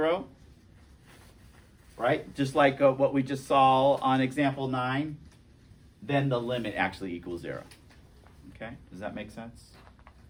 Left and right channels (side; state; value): both; identical; correlation 1.00